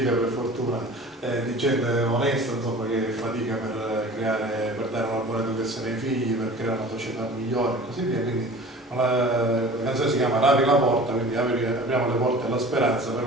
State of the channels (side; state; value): both; normal; correlation 0.42